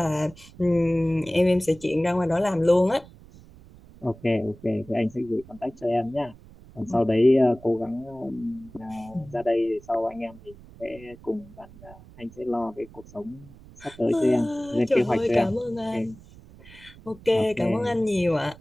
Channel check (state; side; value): noise; right; rumble, 21 dB below the sound